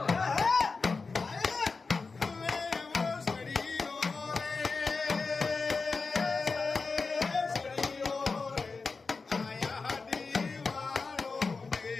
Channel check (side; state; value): right; quieter; 4.3 dB